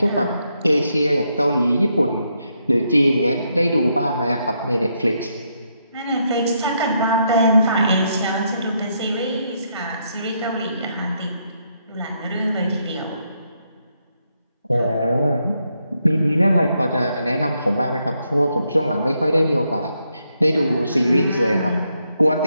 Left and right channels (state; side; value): inverted; both; correlation -0.78